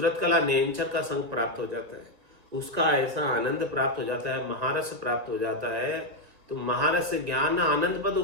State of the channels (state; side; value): late; left; 1.9 ms